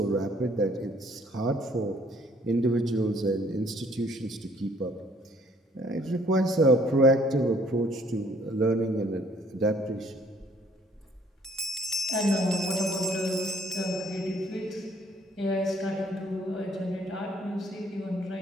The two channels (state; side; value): normal; both; correlation 0.61